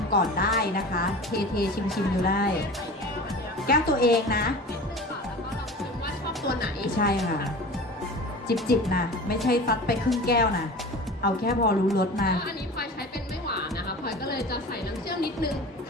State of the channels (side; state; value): both; normal; correlation 0.36